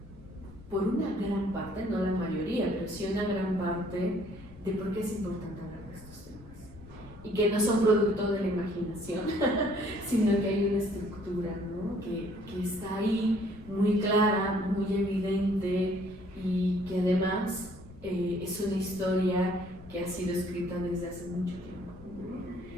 por una gran parte, no la mayoría, pero sí una gran parte, de por qué es importante hablar de estos temas. Y que no son producto de la imaginación, sino que hay una estructura, ¿no? que está ahí muy clara, muy evidente, y que además es una historia que ha sido escrita desde hace mucho tiempo,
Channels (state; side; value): noise; left; rumble, 20 dB below the sound